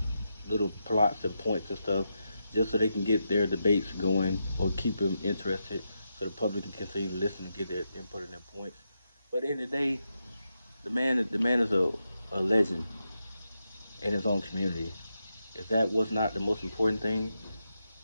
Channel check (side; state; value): both; inverted; correlation -0.86